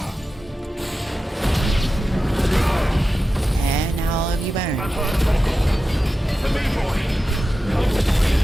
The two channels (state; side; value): normal; both; correlation 0.93